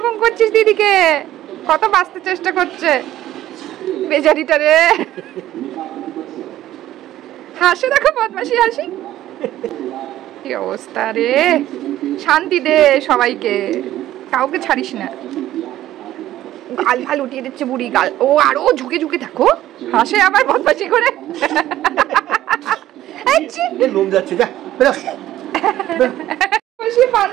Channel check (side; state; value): left; quieter; 13.7 dB